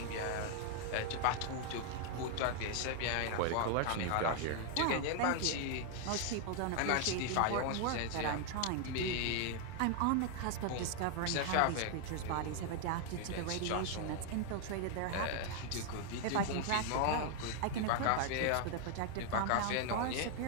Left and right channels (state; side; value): different; both; correlation 0.00